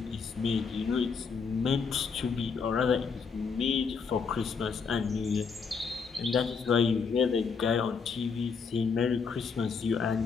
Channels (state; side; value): quieter; right; 5.5 dB